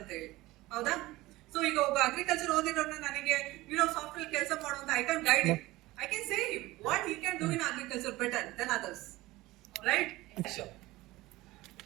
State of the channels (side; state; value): left; quieter; 18.8 dB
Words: ಹೇಳಿ, ಹೌದಾ? ಸೊ ಈಗ ಒಬ್ಬ ಅಗ್ರಿಕಲ್ಚರ್ ಓದಿರೋನ್ನ ನನಗೆ ಸಾಫ್ಟ್ವೇರ್ ಕೆಲಸ ಮಾಡುವಂತ I can guide him, I can say him what he can do in agriculture better than others, right? Sure.